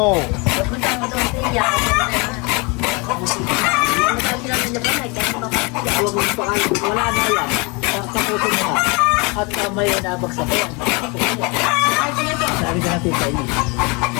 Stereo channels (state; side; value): quieter; right; 29.5 dB